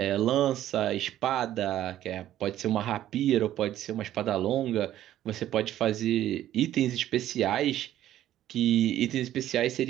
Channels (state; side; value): quieter; left; 12.6 dB